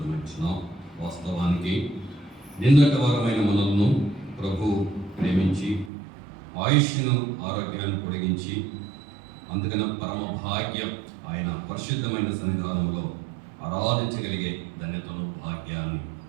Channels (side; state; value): left; drops out; at 5.9 s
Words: వాస్తవానికి నిన్నటి వారమైన మనల్ని ప్రభు ప్రేమించి ఆయుష్ను, ఆరోగ్యాన్ని పొడిగించి, అందుకని పరమ భాగ్యం ఆయన పరిశుద్ధమైన సన్నిధానంలో ఆరాధించగలిగే ధన్యతను, భాగ్యాన్ని